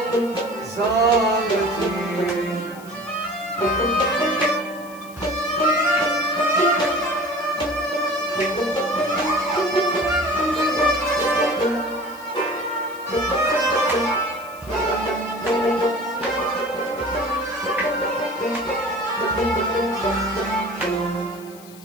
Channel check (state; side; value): noise; left; hiss, 21 dB below the sound